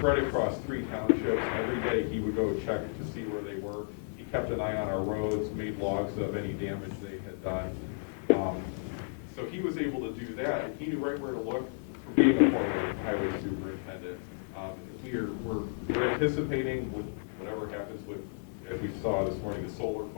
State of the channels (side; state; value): right; silent; 56 dB below the other